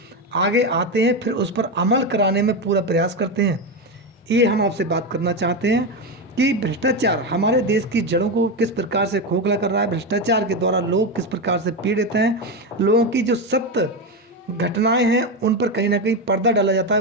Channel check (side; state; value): both; normal; correlation 0.13